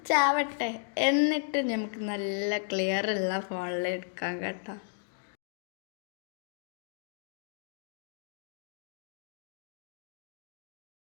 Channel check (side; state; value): right; silent; digital silence